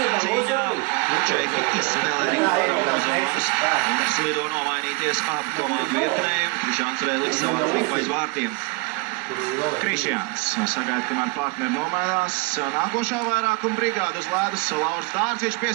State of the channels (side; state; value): left; quieter; 27.6 dB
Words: cīņā. Čeki izspēlē Rīgā zonas un slido nomainīties ap komandu vietnējumu. Krišjāns Rēlis savā līpa aiz vārtiem. Krišjāns sagaida, kamēr partneri nomainās. Nākošā vairākuma brigāda uz ledus. Lauris Dārciņš